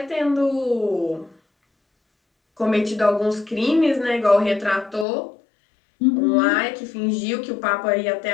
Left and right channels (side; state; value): right; drops out; at 5.1 s